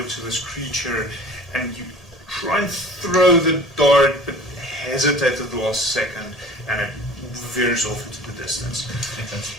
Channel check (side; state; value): both; normal; correlation 0.43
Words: to this creature, and you try and throw the dart, but hesitate at the last second, and it veers off into the distance.